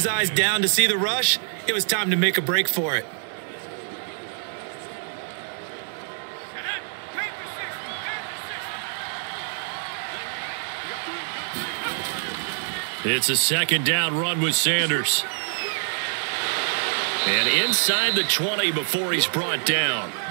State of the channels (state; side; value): silent; left; 61 dB below the other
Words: eyes down to see the rush, it was time to make a break for it. It's a 2nd down run with Sanders. And inside the 20 before he's brought down.